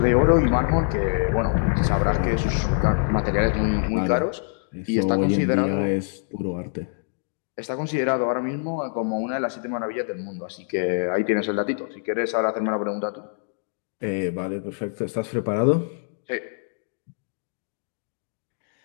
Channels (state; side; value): silent; right; digital silence